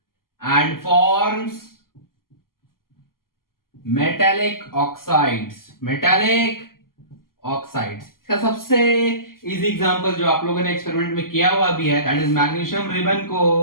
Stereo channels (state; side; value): late; right; 0.92 ms